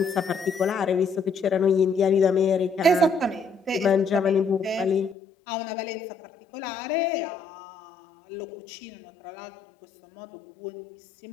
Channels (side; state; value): right; drops out; at 5.2 s